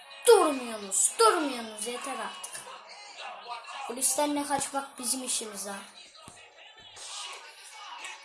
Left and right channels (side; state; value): both; identical; correlation 1.00